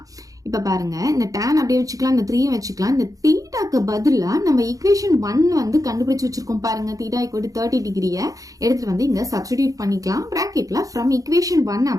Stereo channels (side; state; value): left; late; 0.17 ms